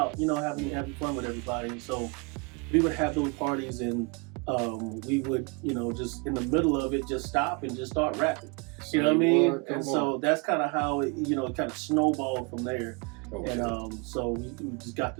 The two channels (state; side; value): quieter; left; 30.6 dB